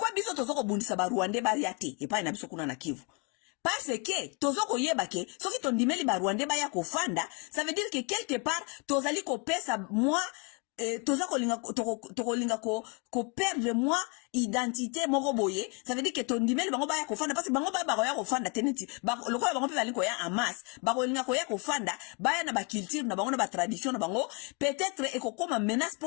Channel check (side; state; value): right; quieter; 34.0 dB